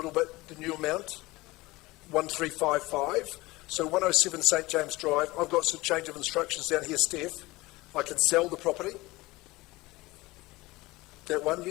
bit, the new amount, 1355. So 107 St James Drive. I've got some change of instructions down here, Steph. I can sell the property. That one,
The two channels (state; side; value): quieter; right; 20.7 dB